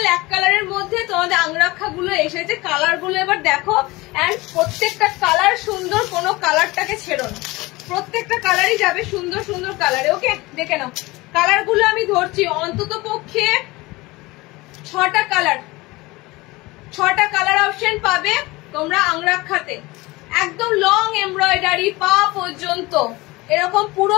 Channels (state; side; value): quieter; right; 21.7 dB